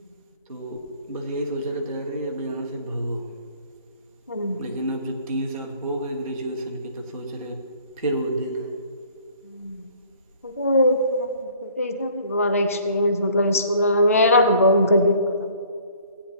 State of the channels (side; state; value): both; inverted; correlation -0.55